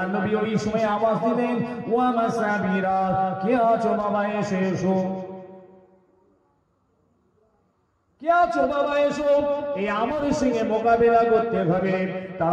নবী ওই সময় আওয়াজ দিলেন, ওয়া মাসাবিরা, কে আছো বাবা, এসে এসো। কে আছো বাবা, এসো, এই আমার সঙ্গে মোকাবেলা করতে হবে,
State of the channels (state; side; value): identical; both; correlation 1.00